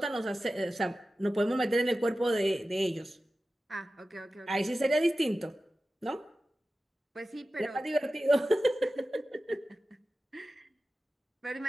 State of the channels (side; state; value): both; normal; correlation 0.94